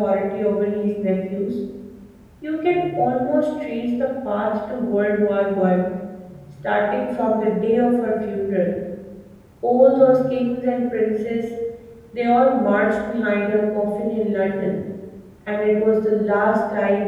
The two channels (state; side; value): identical; both; correlation 1.00